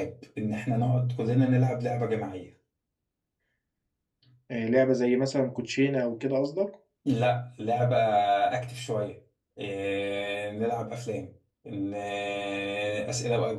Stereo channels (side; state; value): both; identical; correlation 1.00